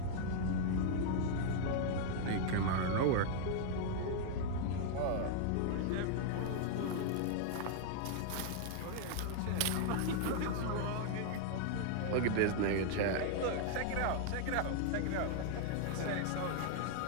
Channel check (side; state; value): both; different; correlation 0.00